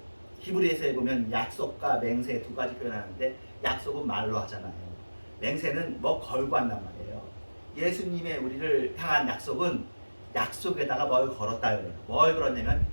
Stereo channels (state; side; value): inverted; both; correlation -1.00